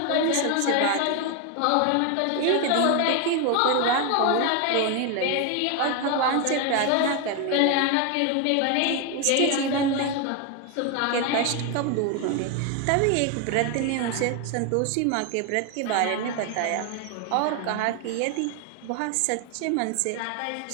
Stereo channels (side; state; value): both; different; correlation 0.01